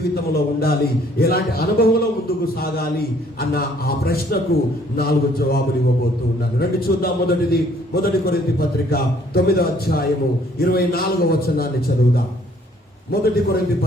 ఉండాలి, ఎలాంటి అనుభవంలో ముందుకు సాగాలి అన్న ఆ ప్రశ్నకు 4 జవాబులు ఇవ్వబోతూ ఉన్నాను. రండి చూద్దాం. మొదటి కొరింథీ పత్రిక 9వ అధ్యాయము 24వ వచనాన్ని చదువుదాం. మొదటి కొరింథీ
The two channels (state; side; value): normal; both; correlation 0.61